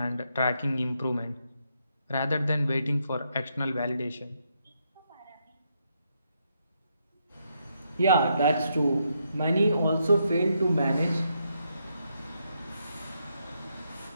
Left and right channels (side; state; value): both; inverted; correlation -0.79